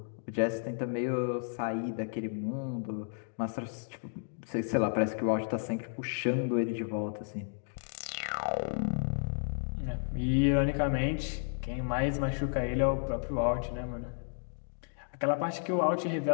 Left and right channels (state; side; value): silent; right; digital silence